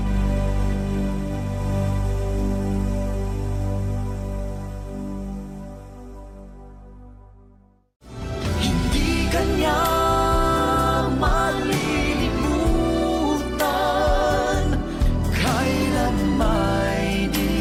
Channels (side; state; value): both; identical; correlation 1.00